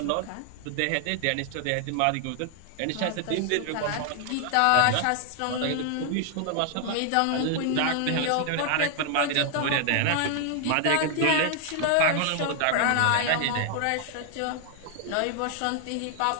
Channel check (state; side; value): different; both; correlation 0.00